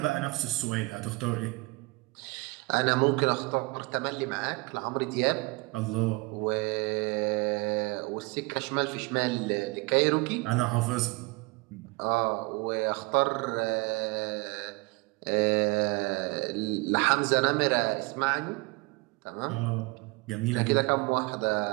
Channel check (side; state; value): left; quieter; 25.7 dB